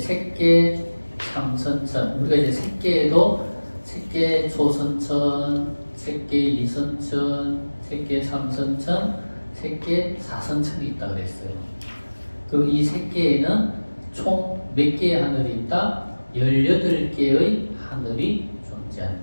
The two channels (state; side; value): inverted; both; correlation -1.00